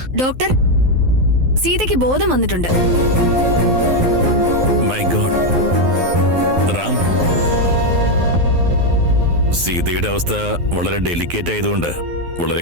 ഡോക്ടർ, സീതയ്ക്ക് ബോധം വന്നിട്ടുണ്ട്. My God. റാം, സീതയുടെ അവസ്ഥ വളരെ ഡെലിക്കേറ്റ് ആയതുകൊണ്ട് വളരെ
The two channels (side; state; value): left; late; 12 ms